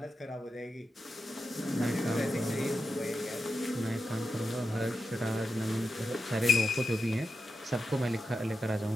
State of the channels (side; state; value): both; normal; correlation 0.88